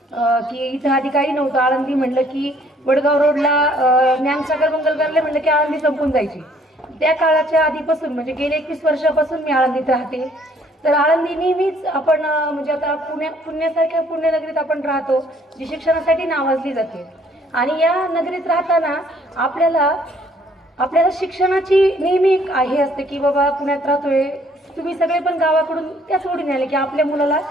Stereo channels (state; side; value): normal; both; correlation 0.62